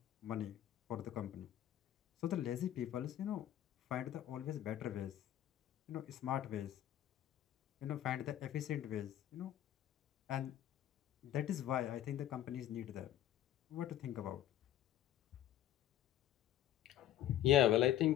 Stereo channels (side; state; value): right; quieter; 12.1 dB